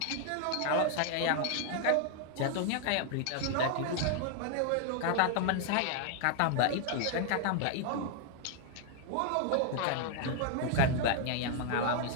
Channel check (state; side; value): different; both; correlation 0.00